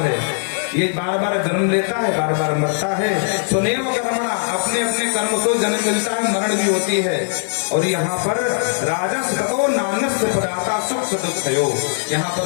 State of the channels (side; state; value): right; silent; 66 dB below the other